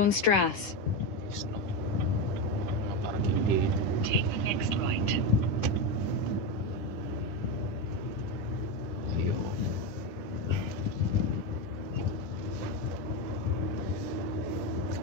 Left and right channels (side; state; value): right; late; 10 ms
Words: Snow. Parang hindi. Take the next right.